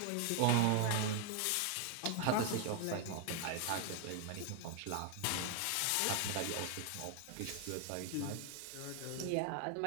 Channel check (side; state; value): both; different; correlation 0.01